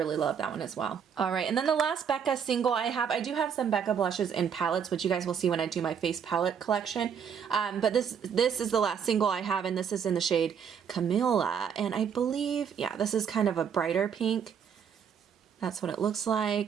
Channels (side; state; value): left; quieter; 7.4 dB